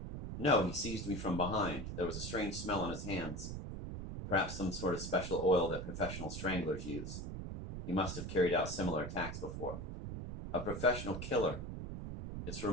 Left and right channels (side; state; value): right; noise; rumble, 6 dB below the sound